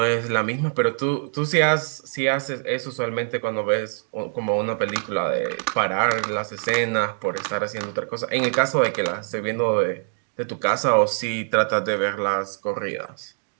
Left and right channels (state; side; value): silent; left; digital silence